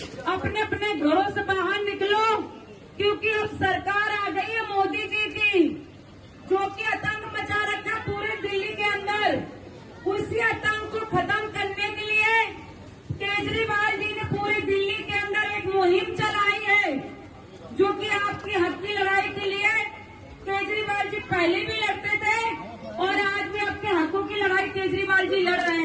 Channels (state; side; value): identical; both; correlation 1.00